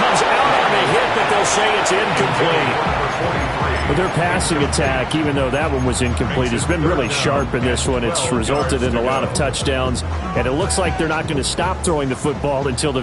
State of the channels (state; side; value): identical; both; correlation 1.00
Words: out on the hit, but they'll say it's incomplete. But their passing attack, even though that one was incomplete, has been really sharp in this one. It's resulted in a lot of touchdowns, and it looks like they're not going to stop throwing the football until the